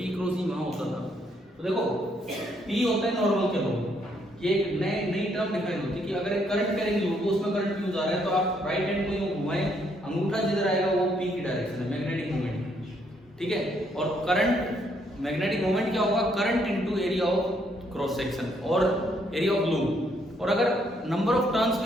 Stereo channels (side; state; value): both; normal; correlation 0.71